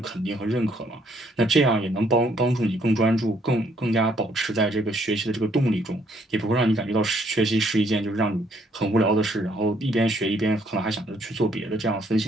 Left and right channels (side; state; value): both; normal; correlation 0.67